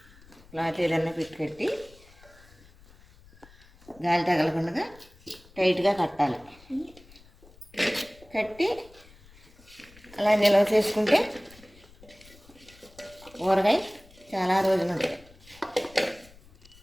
క్లాత్ ఏదైనా పెట్టి కట్టి గాలి తగలకుండా టైట్గా కట్టాలి. కట్టి అలా నిల్వ చేసుకుంటే ఊరగాయ చాలా రోజులు ఉంటాయి.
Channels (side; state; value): left; noise; rumble, 25 dB below the sound